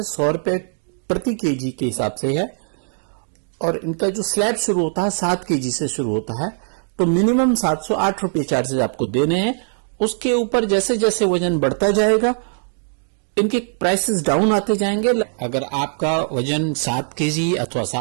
100 रुपए प्रति KG के हिसाब से है और इनका जो स्लैब शुरू होता है 7 केजी से शुरू होता है। तो मिनिमम 708 रुपये चार्जेस आपको देने हैं। उसके ऊपर जैसे जैसे वजन बढ़ता जाएगा इनके प्राइसेस डाउन आते जाएंगे। अगर आपका वजन 7 केजी अथवा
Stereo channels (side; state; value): left; silent; digital silence